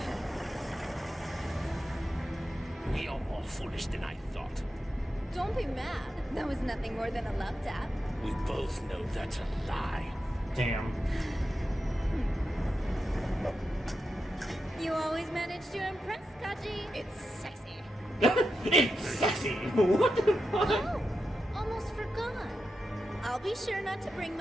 You're more foolish than I thought. Don't be mad. That was nothing more than a love tap. We both know that's a lie. Damn. You always manage to impress, Kaji. It's sexy. It's sexy. What the fuck? Oh, almost forgot. I'll be sure not to bring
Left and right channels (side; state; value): both; normal; correlation 0.88